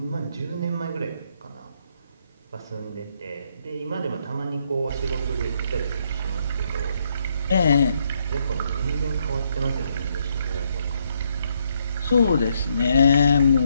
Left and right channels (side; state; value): both; inverted; correlation -0.74